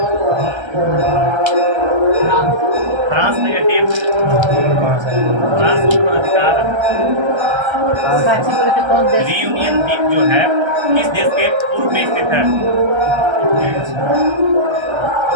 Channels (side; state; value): left; late; 1.3 ms